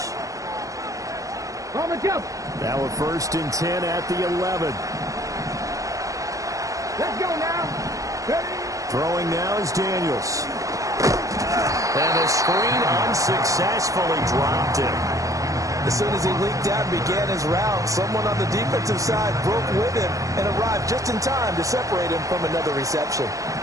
Now a first and 10 at the 11. Let's go now. Ready? Throwing now is Daniels. And the screen unsuccessfully dropped him. As soon as he leaked out and began his route, someone on the defensive side broke with him and arrived just in time to separate him from another reception.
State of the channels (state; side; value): late; left; 0.16 ms